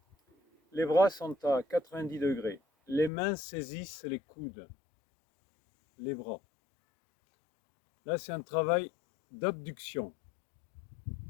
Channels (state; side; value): drops out; right; at 3.1 s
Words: Les bras sont à 90 degrés. Les mains saisissent les coudes, les bras. Là, c'est un travail d'abduction.